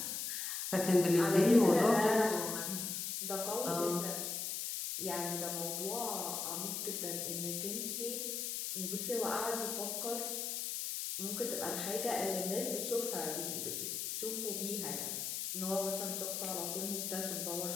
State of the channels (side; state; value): left; noise; hiss, 3 dB below the sound